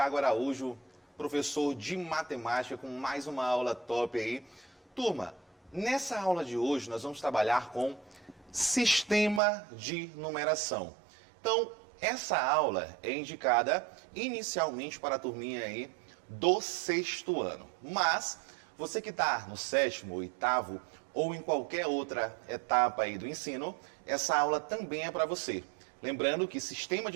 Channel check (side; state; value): left; drops out; at 9.4 s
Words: Araújo, professor de matemática com mais uma aula top aí. Turma, nessa aula de hoje nós vamos trabalhar com sistema de numeração. Então, essa aula é indicada inicialmente para a turminha aí do 6º ano. Mas você que está no 7º, 8º ou em qualquer outra etapa aí do ensino, essa aula também é para você. Lembrando que sistema